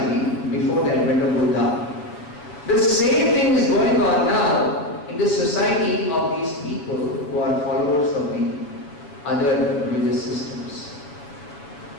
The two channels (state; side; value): late; right; 7.0 ms